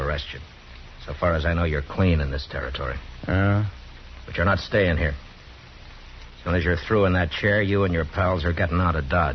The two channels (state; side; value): identical; both; correlation 1.00